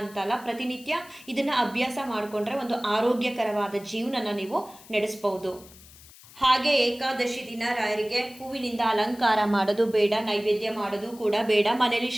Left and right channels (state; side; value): noise; left; hiss, 21 dB below the sound